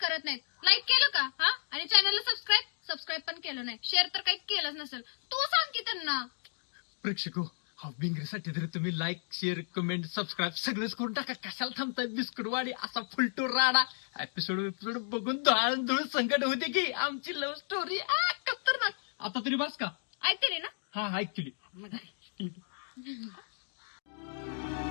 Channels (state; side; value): silent; right; digital silence